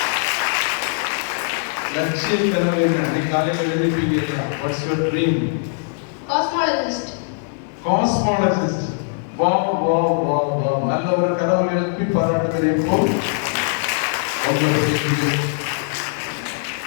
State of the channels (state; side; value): silent; right; 65 dB below the other